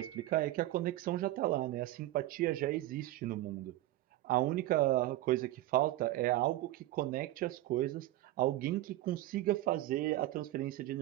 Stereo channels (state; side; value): quieter; left; 15.7 dB